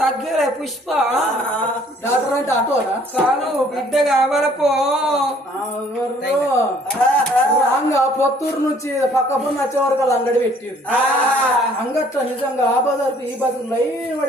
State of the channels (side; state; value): both; normal; correlation 0.59